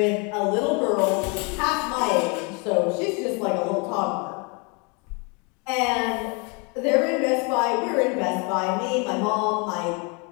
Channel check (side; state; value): right; quieter; 32.1 dB